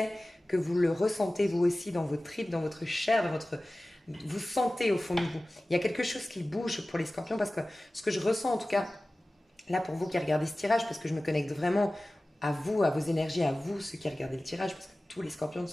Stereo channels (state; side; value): normal; both; correlation 0.97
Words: que vous le ressentez vous aussi dans vos tripes, dans votre chair, vous sentez au fond de vous. Il y a quelque chose qui bouge pour les scorpions parce que ce que je ressens en tout cas, là pour vous qui regardez ce tirage, parce que je me connecte vraiment à vous, à vos énergies, à vous ceux qui regardez le tirage, parce que tous les scorpions ne